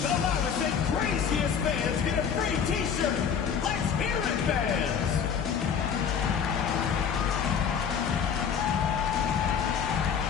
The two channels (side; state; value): right; quieter; 7.3 dB